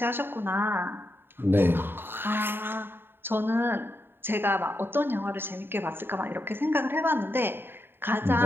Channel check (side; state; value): left; late; 0.10 ms